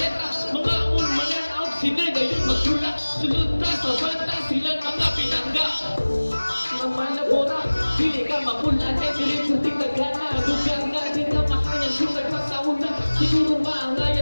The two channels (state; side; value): inverted; both; correlation -1.00